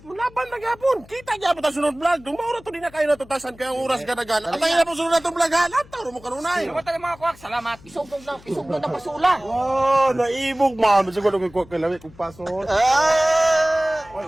laban na gyapon. Kita gyapon ta sunod vlog. Dumaura to din na kayo natutasan kay ang oras gadagan. At ay na po sunod natong vlog ha. Lantaw mo kanunay. Salamat mga kuwak, salamat. Isugnog na pasula. Oh, naibog man. Bisag ko kay kuha kay lawi kung pasol. Ah! Ay,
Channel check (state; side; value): noise; left; hum, 23 dB below the sound